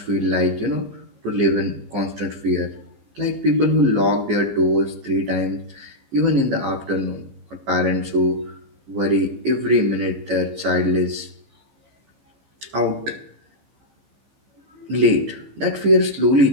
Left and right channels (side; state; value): left; late; 15 ms